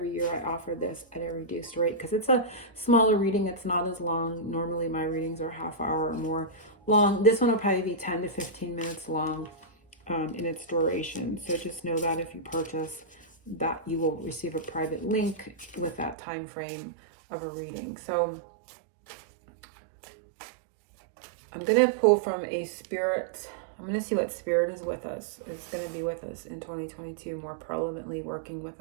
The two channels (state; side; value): drops out; left; at 16.2 s